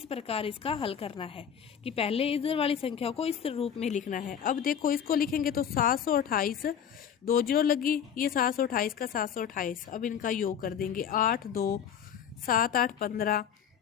प्रकार इसका हल करना है कि पहले इधर वाली संख्या को इस रूप में लिखना है। अब देखो इसको लिखेंगे तो 728, 2 0 लगी, ये 728 का 728। अब इनका योग कर देंगे, 8 2 7 8 15,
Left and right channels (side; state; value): right; quieter; 8.4 dB